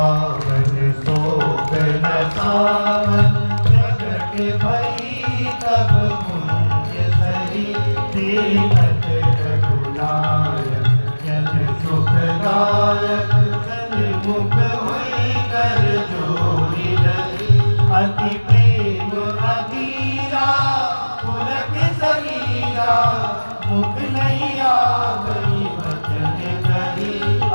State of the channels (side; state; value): both; inverted; correlation -1.00